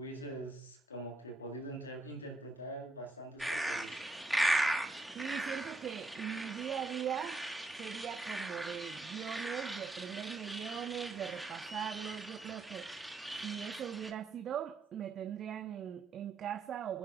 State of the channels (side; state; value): left; quieter; 3.3 dB